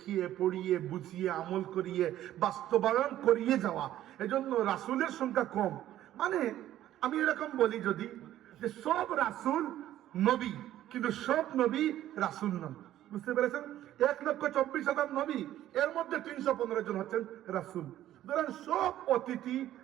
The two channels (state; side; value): quieter; left; 13.0 dB